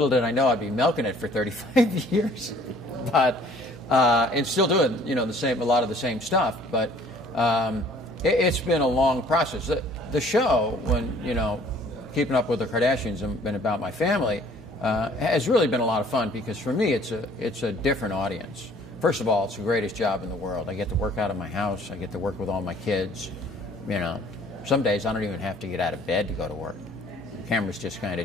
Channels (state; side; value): normal; both; correlation 0.56